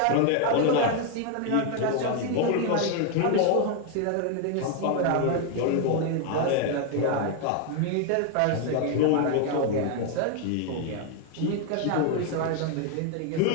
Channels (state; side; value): different; both; correlation 0.01